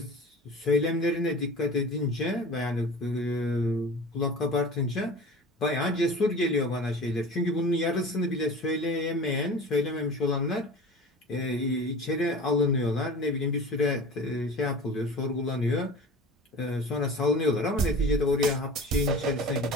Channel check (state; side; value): normal; both; correlation 0.37